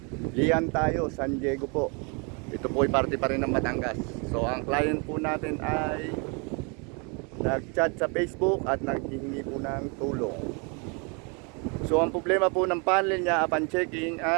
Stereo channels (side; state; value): left; quieter; 33.6 dB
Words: Lian tayo, San Diego po. Ito po ay parte pa rin ng Batangas. So ang client po natin ay nag-chat sa Facebook at naghihingi po ng tulong. So ang problema po ng panel niya upon checking